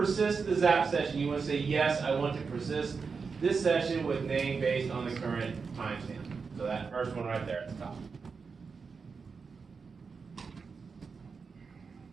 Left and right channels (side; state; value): left; quieter; 5.2 dB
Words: the ZAP session, you want to say, yes, I want to persist this session with name based on the current timestamp. So that first one right there at the top.